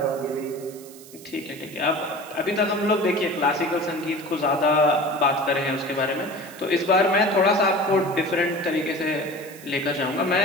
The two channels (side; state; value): right; noise; hiss, 19 dB below the sound